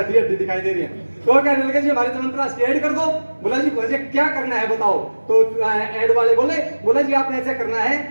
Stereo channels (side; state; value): both; inverted; correlation -1.00